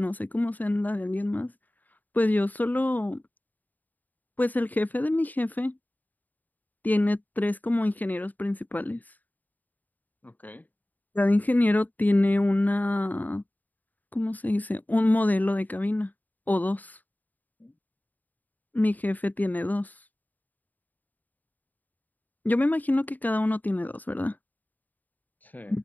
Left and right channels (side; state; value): right; late; 0.083 ms